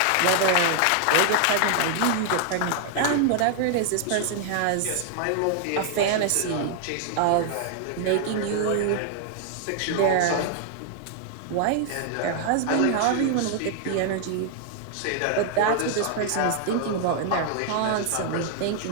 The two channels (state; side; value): different; both; correlation 0.00